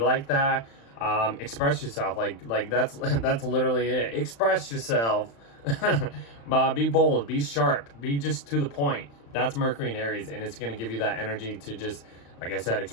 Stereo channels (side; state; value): right; late; 35 ms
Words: that. Express yourself. Like that's literally it. Express yourself. Be bold, be sharp, be just to the point. That's Mercury in Aries, and it's going to give you that energy to just, like I said,